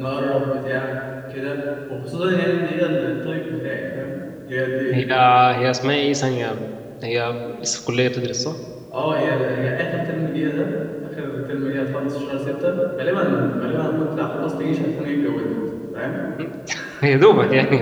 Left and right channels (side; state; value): both; identical; correlation 1.00